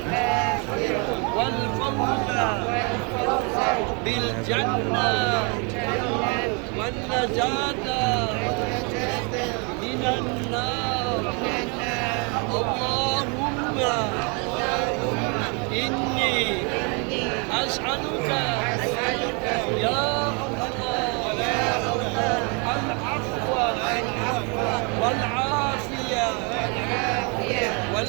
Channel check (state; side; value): quieter; left; 33.9 dB